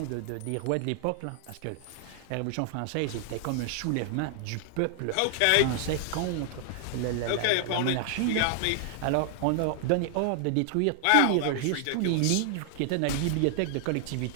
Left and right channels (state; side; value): different; both; correlation 0.00